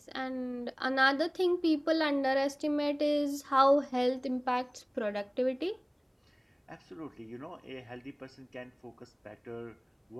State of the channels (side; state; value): both; identical; correlation 1.00